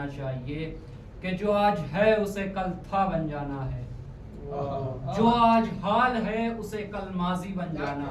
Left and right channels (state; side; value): identical; both; correlation 1.00